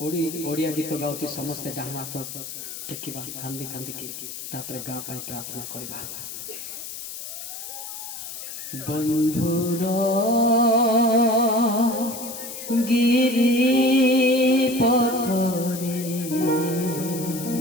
ओडिया गीत गाउची समस्ते डाहना हाथ टेकिबा, कांदी कांदी की तापरे गाँ पाई प्रार्थना करिबा। बंधुर गिरी पथरे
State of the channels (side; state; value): left; noise; hiss, 9 dB below the sound